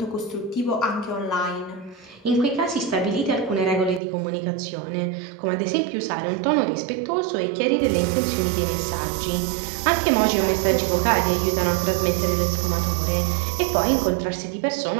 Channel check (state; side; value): drops out; left; at 4.0 s